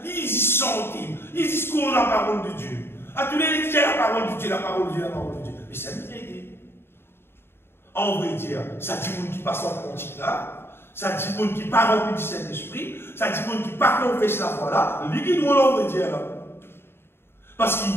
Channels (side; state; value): right; late; 0.11 ms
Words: ils disent santé, ils disent qu'on a la parole de Dieu. À tous les disent la parole de Dieu, la parole de Dieu, la parole de Dieu. Mais c'est une idée. En vrai dire, ça dit monde qui passe en cantique là, ça dit monde qui part rempli du Saint-Esprit, ça dit monde qui part confesse la foi là, lui qui doit l'en dire là. Parce que